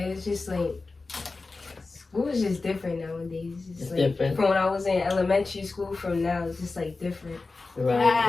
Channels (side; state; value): right; quieter; 3.8 dB